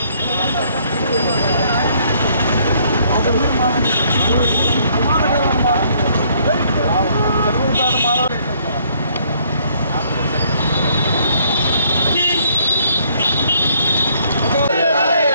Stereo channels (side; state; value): both; inverted; correlation -0.65